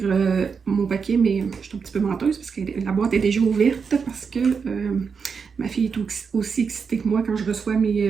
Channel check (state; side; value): quieter; left; 5.8 dB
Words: mon paquet, mais je suis un petit peu menteuse parce que la boîte est déjà ouverte parce que ma fille est aussi excitée que moi quand je reçois